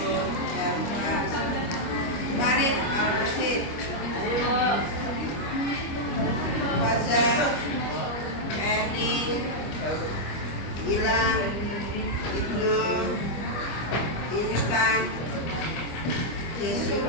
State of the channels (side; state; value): right; late; 25 ms